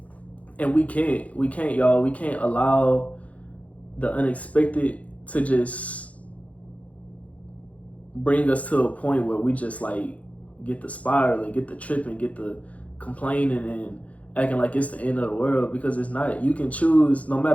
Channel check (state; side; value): late; right; 0.067 ms